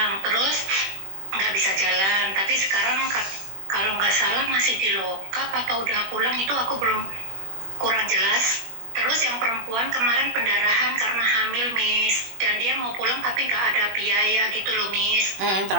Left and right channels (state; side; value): late; left; 21 ms